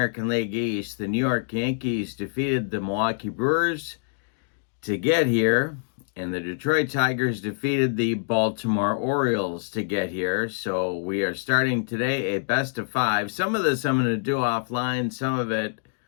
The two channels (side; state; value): right; silent; digital silence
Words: League East. The New York Yankees defeated the Milwaukee Brewers to get here, and the Detroit Tigers defeated the Baltimore Orioles to get here. So we are starting today a best of five. Some of this I'm going to do offline, some of it